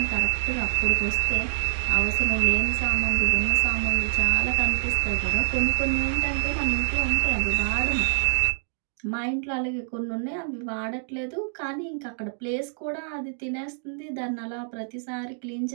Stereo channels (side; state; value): left; silent; 60 dB below the other